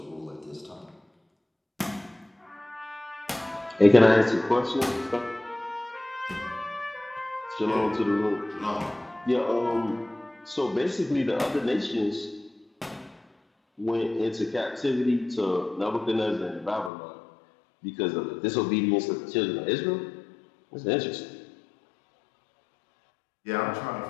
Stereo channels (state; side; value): drops out; right; at 16.9 s